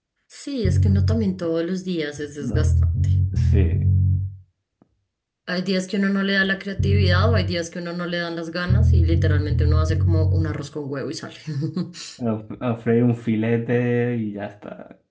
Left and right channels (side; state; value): both; identical; correlation 1.00